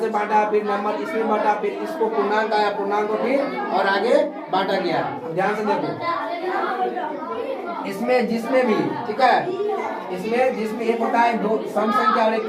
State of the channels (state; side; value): identical; both; correlation 1.00